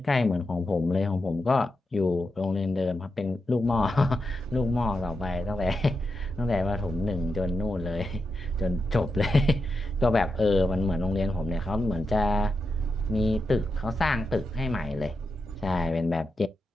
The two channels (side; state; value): both; normal; correlation 0.87